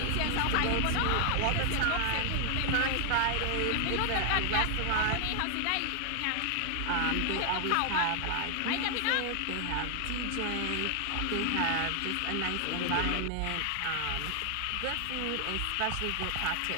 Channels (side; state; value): both; different; correlation 0.00